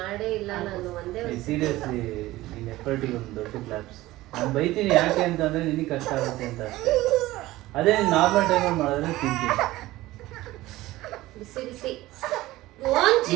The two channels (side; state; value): left; quieter; 17.4 dB